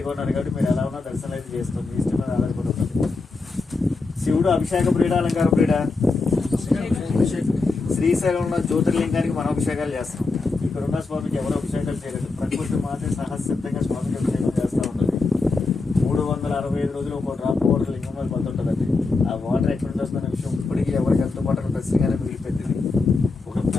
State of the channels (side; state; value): right; quieter; 3.8 dB